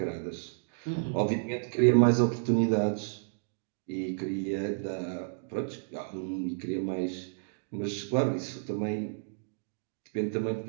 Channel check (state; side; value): silent; left; digital silence